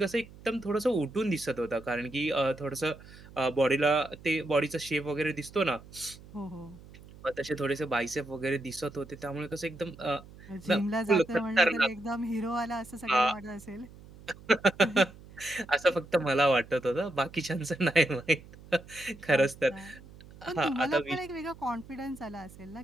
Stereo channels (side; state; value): right; noise; hum, 20 dB below the sound